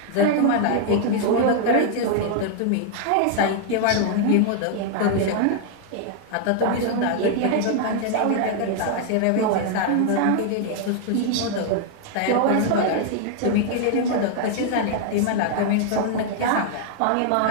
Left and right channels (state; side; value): different; both; correlation 0.00